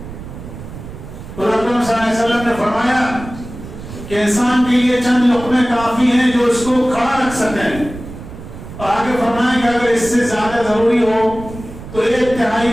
اور اکرم صلی اللہ علیہ وسلم نے فرمایا کہ انسان کے لیے چند لقمے کافی ہیں جو اس کو کھڑا رکھ سکیں. اور آگے فرمائیں کہ اگر اس سے زیادہ ضروری ہو تو 1/3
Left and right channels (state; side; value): noise; right; rumble, 13 dB below the sound